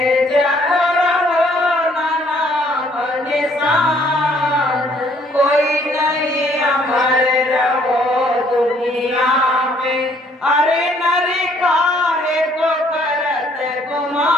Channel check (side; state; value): both; normal; correlation 0.63